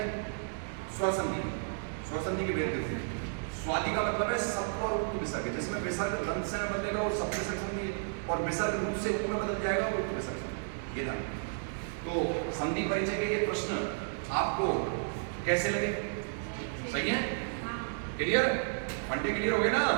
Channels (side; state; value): left; silent; digital silence